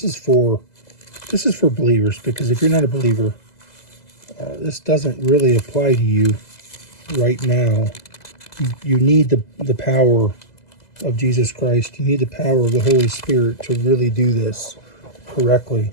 is for believers, because if you're not a believer, this doesn't really apply to you right now. You need the power of Jesus Christ. You need the power of the Holy Spirit to really do this correctly.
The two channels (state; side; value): late; right; 2.0 ms